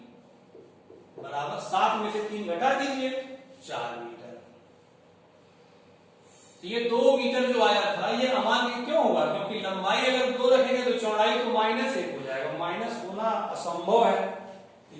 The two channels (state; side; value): identical; both; correlation 1.00